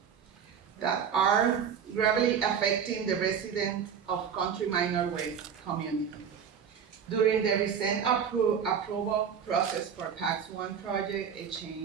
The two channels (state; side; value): quieter; left; 7.4 dB